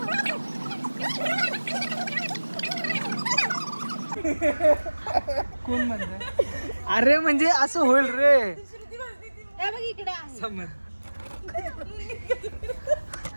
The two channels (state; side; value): inverted; both; correlation -1.00